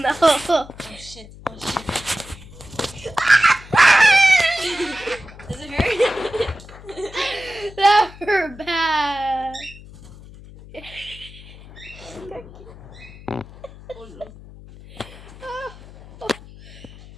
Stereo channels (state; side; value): noise; left; hum, 18 dB below the sound